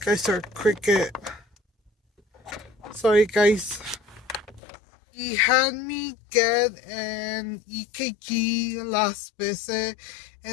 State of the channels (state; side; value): drops out; right; at 4.6 s